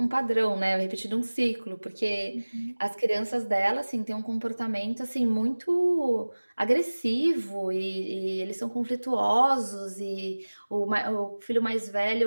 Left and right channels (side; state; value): both; inverted; correlation -1.00